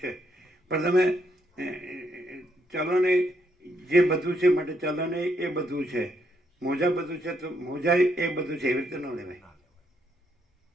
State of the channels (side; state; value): both; normal; correlation 0.75